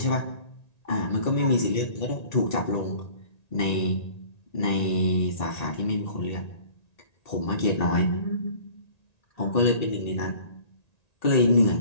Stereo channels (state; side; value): late; right; 1.9 ms